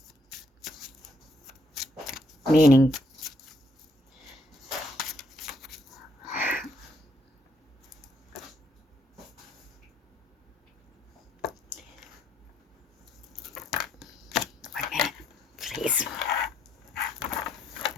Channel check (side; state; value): both; normal; correlation 0.69